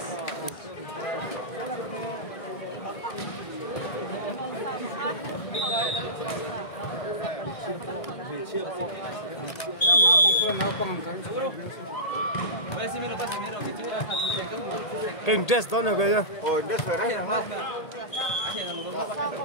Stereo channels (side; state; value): right; late; 1.8 ms